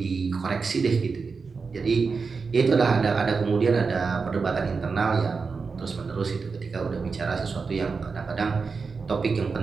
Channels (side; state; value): left; quieter; 4.8 dB